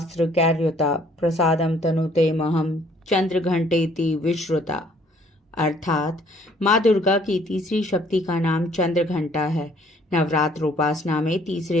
कैर्युता प्रसादम तनुते महम चंद्रघंटेति विश्रुता। अर्थात माँ दुर्गा की तीसरी शक्ति का नाम चंद्रघंटा है। नवरात्र उपासना में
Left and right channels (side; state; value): both; normal; correlation 0.61